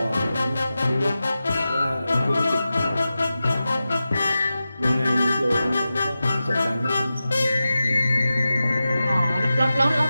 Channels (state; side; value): inverted; both; correlation -0.93